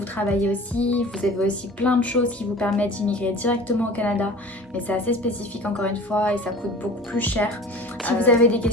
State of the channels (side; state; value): both; normal; correlation 0.41